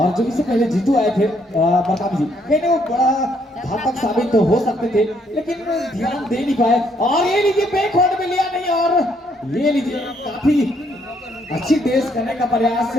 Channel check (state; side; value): normal; both; correlation 0.70